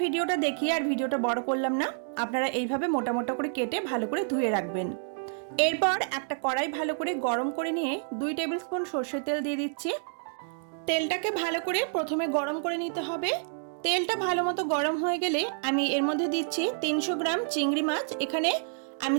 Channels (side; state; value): left; silent; digital silence